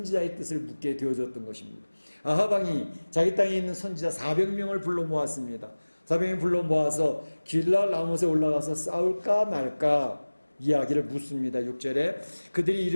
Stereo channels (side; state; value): both; inverted; correlation -1.00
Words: 뜻을 묻게 되어졌던 것입니다. 아합 왕이 자기 땅에 있는 선지자 400명을 불러 모았습니다. 400명 불러 모아서 길랄 라못에 올라가서 싸울까 말까 이야기를 묻습니다. 6절에 그들이